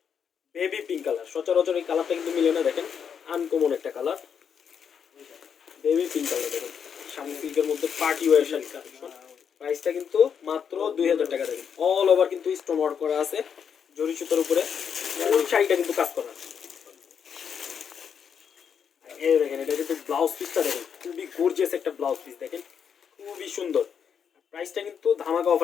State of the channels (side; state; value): right; quieter; 7.4 dB